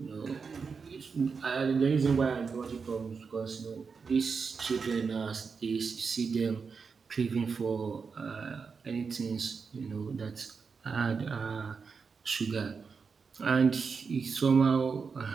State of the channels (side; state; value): left; quieter; 5.4 dB